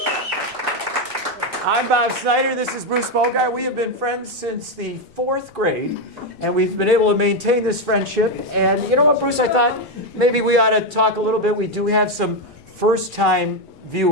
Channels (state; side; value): normal; both; correlation 0.06